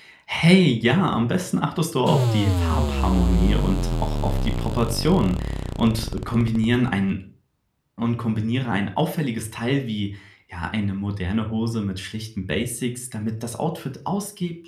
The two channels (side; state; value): both; identical; correlation 1.00